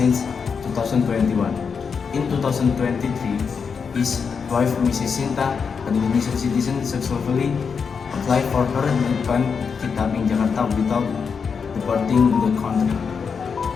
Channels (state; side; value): quieter; right; 5.9 dB